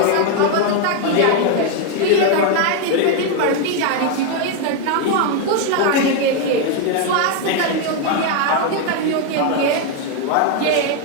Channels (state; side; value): different; both; correlation 0.01